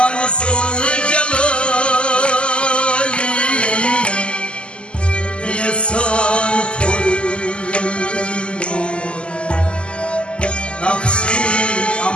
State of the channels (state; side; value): late; right; 0.052 ms